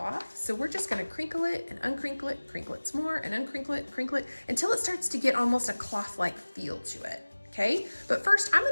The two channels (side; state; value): both; inverted; correlation -1.00